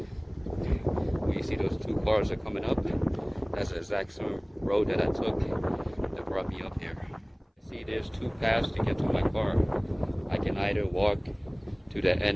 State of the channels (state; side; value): identical; both; correlation 1.00